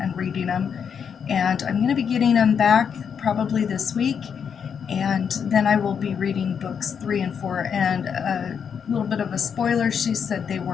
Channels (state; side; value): quieter; right; 7.1 dB